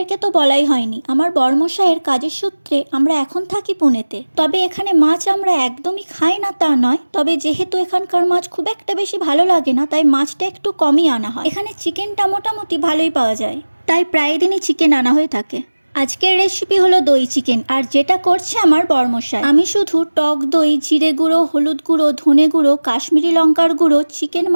তো বলাই হয়নি, আমার বর্মশাইয়ের কাজের সূত্রে আমরা এখন থাকি পুনেতে। তবে এখানে মাছ আমরা একদমই খাই না তা নয়, তবে যেহেতু এখানকার মাছ খুব একটা বেশি ভালো লাগে না তাই মাছটা একটু কমই আনা হয়। এখানে চিকেনটা মোটামুটি ভালোই পাওয়া যায়, তাই প্রায় দিনই চিকেন আনা হয়ে থাকে। আজকের রেসিপি হলো দই চিকেন, আর যেটা করছে আমার বর্মশাই। আমি শুধু টক দই, জিরে গুঁড়ো, হলুদ গুঁড়ো, ধনে গুঁড়ো, কাশ্মীরি লঙ্কার গুঁড়ো, চিকেন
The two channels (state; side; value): inverted; both; correlation -1.00